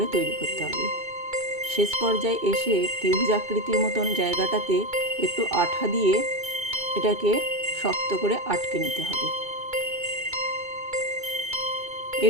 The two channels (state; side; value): late; left; 2.2 ms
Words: তৈরি করতে হবে। শেষ পর্যায়ে এসে ত্রিভুজ আকৃতির মতন জায়গাটাতে একটু আঠা দিয়ে এটাকে শক্ত করে আটকে নিতে হবে।